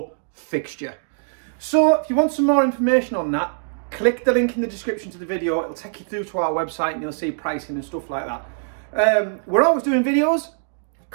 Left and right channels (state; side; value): silent; left; digital silence